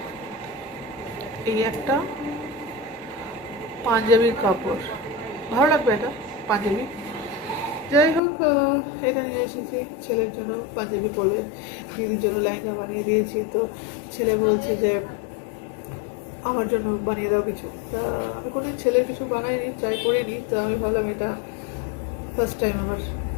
এই একটা পাঞ্জাবির কাপড়, ভালো লাগবে এটা পাঞ্জাবি। যাই হোক, এটা নিয়ে এসেছি ছেলের জন্য, পাঞ্জাবি পরবে। দিদির জন্য লেহেঙ্গা বানিয়ে দিয়েছি। তো ছেলে বলছে যে আমার জন্য বানিয়ে দাও কিছু। তা আমি কোনোদিন ছেলের কিছু বানাইনি, ট্রাই করিনি। তো আমি ভাবলাম এটা ফার্স্ট টাইম আমার,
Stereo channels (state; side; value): drops out; right; at 8.2 s